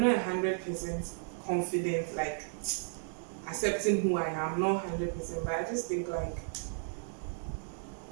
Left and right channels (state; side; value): silent; left; 55 dB below the other